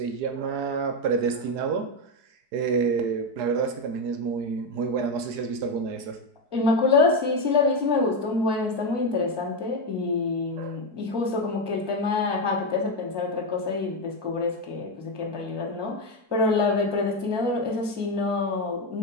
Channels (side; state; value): left; late; 4.9 ms